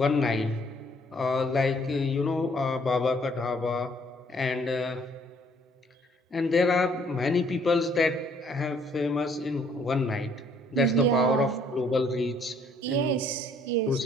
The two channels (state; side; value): normal; both; correlation 0.63